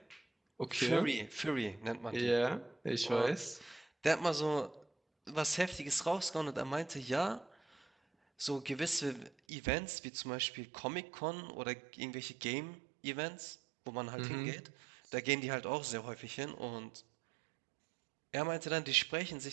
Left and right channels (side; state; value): left; drops out; at 9.3 s